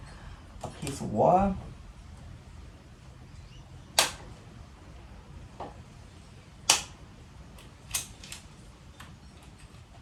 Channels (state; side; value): identical; both; correlation 1.00